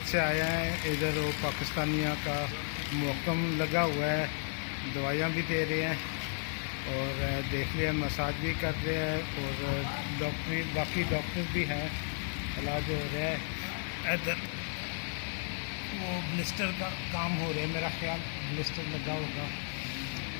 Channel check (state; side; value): silent; right; 55 dB below the other